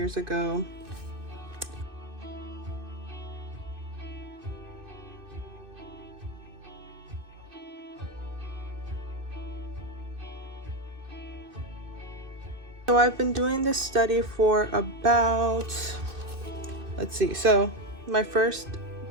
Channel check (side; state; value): left; late; 2.6 ms